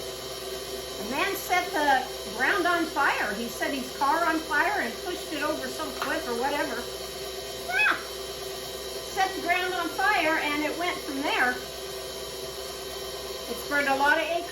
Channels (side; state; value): both; identical; correlation 1.00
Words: The man set the ground on fire. He set his car on fire and pushed it over some cliff or whatever. Yeah. Set the ground on fire and it went from there. It's burned a lot of